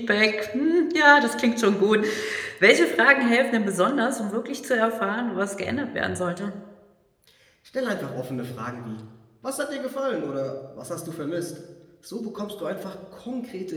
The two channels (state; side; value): identical; both; correlation 1.00